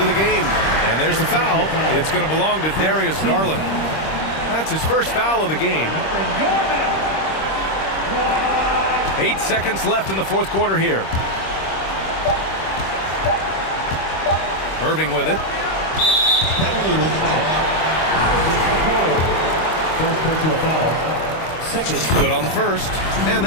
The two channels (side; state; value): right; late; 26 ms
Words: the game. And there's the foul. It's going to belong to Darius Garland. That's his first foul of the game. 8 seconds left in the fourth quarter here. Irving with it. Good on the first, and